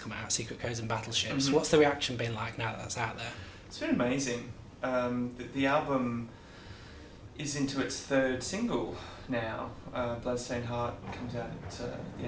out, Secret Codes and Battleships. Mm-hmm. What's the reaction been like now that that's out there? It's been amazing. The album is into its third single now. Bloodstained Heart comes out at the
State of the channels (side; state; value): both; identical; correlation 1.00